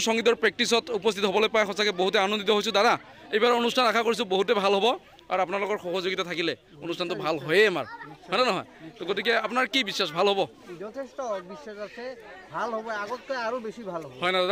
সংগীতৰ প্ৰেক্টিছত উপস্থিত হ'বলৈ পাই সঁচাকৈ বহুতে আনন্দিত হৈছোঁ দাদা এইবাৰ অনুষ্ঠান আশা কৰিছোঁ বহুতে ভাল হ'ব আৰু আপোনালোকৰ সহযোগিতা থাকিলে অনুষ্ঠানটো ভাল হয়ে আমাৰ হয় নহয় তো গতিকে আপোনাৰ কি বিশ্বাস ভাল হ'ব যথেষ্ট বিশ্বাস আছে ভাল হ'ব আগতকৈ আৰু বেছি ভাল হ'ব হয় না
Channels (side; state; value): both; identical; correlation 1.00